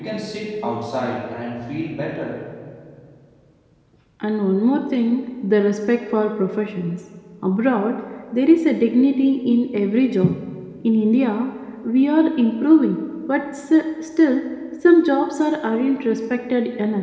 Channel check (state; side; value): identical; both; correlation 1.00